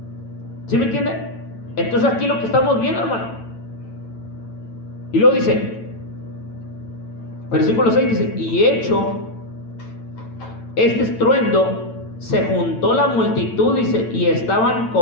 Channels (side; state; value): right; late; 9.0 ms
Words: ¿Sí me entiende? Entonces aquí lo que estamos viendo, hermano. Y luego dice, versículo 6 dice, y hecho este estruendo, se juntó la multitud, dice, y estaban